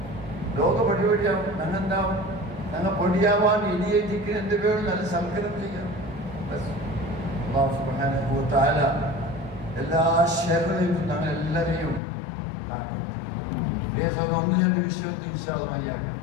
ലോക പടിപടിയാവും. ഞങ്ങെന്താവും? ഞങ്ങൾ പൊടിയാവാൻ ഇനിയേറ്റിക്ക് എന്ത് പേരും നല്ല സൽക്കരം ചെയ്യാം. അല്ലാഹു സുബ്ഹാനഹു വ തആല എല്ലാ ഷർറിലും ഞങ്ങൾ എല്ലാവരെയും ഒന്ന് രണ്ട് വിഷയത്തിൽ ഇൻഷാ അല്ലാഹ് മയ്യാക്കാം.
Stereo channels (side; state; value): right; drops out; at 12.0 s